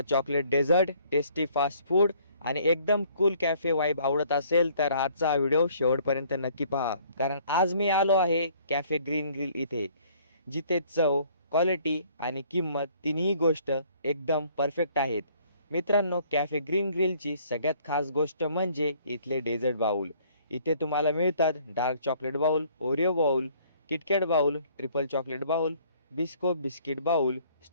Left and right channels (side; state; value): both; inverted; correlation -0.59